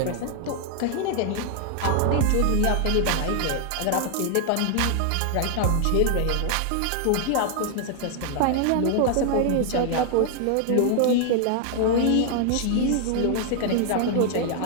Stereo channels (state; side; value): different; both; correlation 0.00